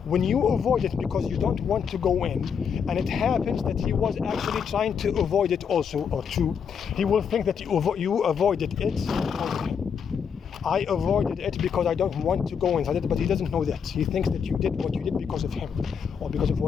When you avoid it because you don't want to go in, and it happens that he was actually trying to avoid it also, or two, he will think that you avoided it. I avoided it because I don't want to go inside it, but he doesn't know that. He thinks that you did what you did because of him, or because of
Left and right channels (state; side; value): quieter; right; 6.9 dB